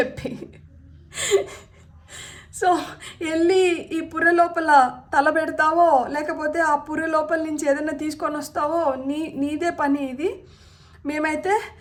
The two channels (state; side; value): identical; both; correlation 1.00